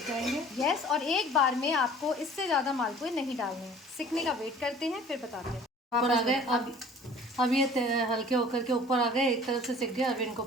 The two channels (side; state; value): both; normal; correlation 0.48